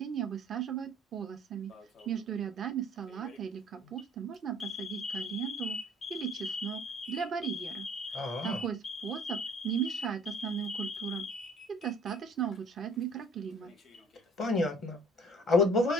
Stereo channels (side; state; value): both; normal; correlation 0.53